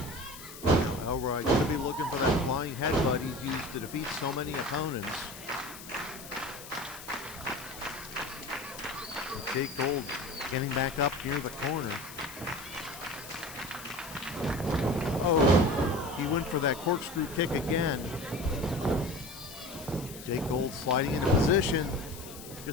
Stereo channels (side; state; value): left; noise; hiss, 14 dB below the sound